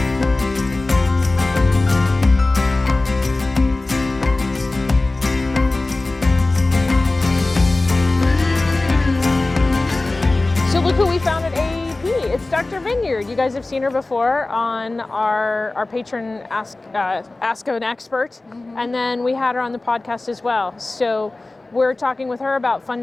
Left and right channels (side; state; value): right; quieter; 3.0 dB